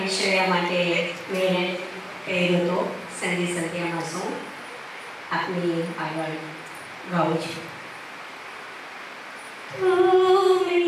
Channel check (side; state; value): both; identical; correlation 1.00